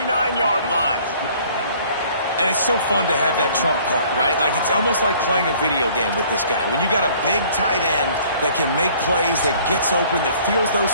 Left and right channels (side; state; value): both; inverted; correlation -0.55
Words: line. And it's so fun to have that trump card, right? Like, it's almost like playing a video game with this guy. When you got a big tight end that can make plays, that gets open, that feels